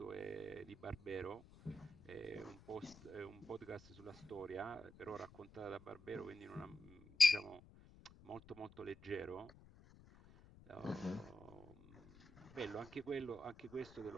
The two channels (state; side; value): noise; left; rumble, 20 dB below the sound